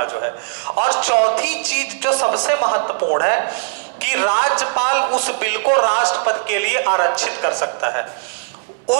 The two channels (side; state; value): left; silent; digital silence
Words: जो है। और चौथी चीज जो सबसे महत्वपूर्ण है कि राज्यपाल उस बिल को राष्ट्रपति के लिए आरक्षित कर सकता है,